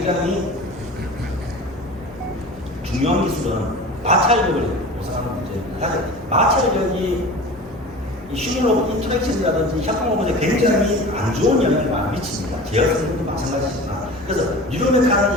중요한 기술은 마찰력을 보상하는 문제입니다. 마찰력이 휴먼로봇 인터랙션이라든지 협동로봇에 굉장히 안 좋은 영향을 많이 미칩니다. 제어성도 마찬가지지만. 그래서 뉴로메카는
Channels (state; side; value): normal; both; correlation 0.36